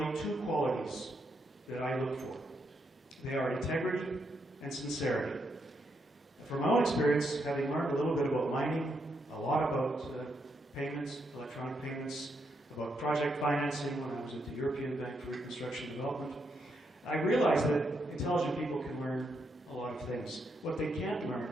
two qualities that I look for. They are integrity and sincerity. From my own experience, having learned a little bit about mining, a lot about payments, electronic payments, about project financing when I was at the European Bank for Reconstruction and Development, I realized that intelligent people can learn a lot of things. What they can't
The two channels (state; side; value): normal; both; correlation 0.79